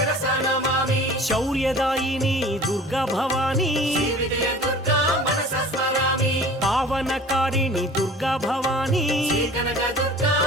నమామి శౌర్యదాయిని దుర్గా భవానీ శ్రీ విజయ దుర్గా మనస స్మరామి పావనకారిణి దుర్గా భవానీ శ్రీ కనక దుర్గా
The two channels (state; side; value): normal; both; correlation 0.44